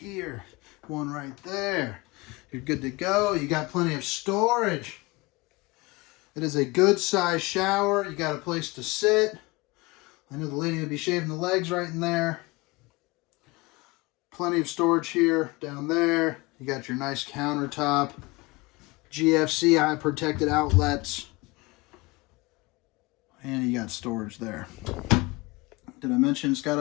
One right there. You're good to go. You got plenty of storage. It is a good size shower. You got a place to sit. I know the lady will be shaving the legs right in there. Plenty of storage here, down there. You got your nice countertop. GFC eye protected outlets. And you got storage there. Did I mention it's got a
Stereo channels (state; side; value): quieter; right; 24.1 dB